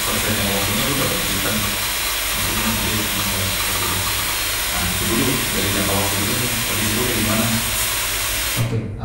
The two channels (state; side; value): identical; both; correlation 1.00